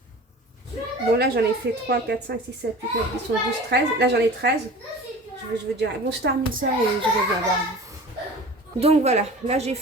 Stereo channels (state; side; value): normal; both; correlation 0.39